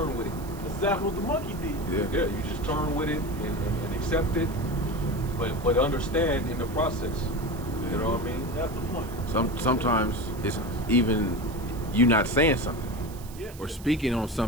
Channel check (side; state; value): right; noise; hiss, 19 dB below the sound